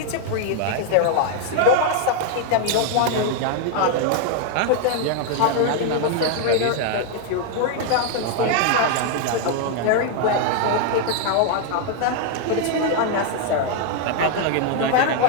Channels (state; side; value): different; both; correlation 0.00